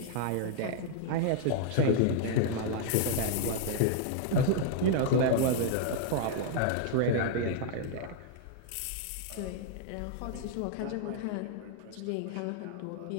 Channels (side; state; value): both; different; correlation -0.01